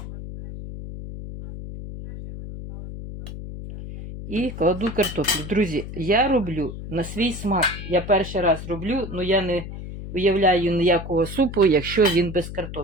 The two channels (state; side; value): noise; left; hum, 10 dB below the sound